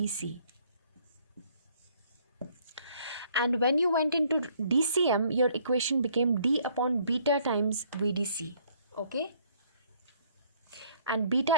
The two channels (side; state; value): both; inverted; correlation -0.63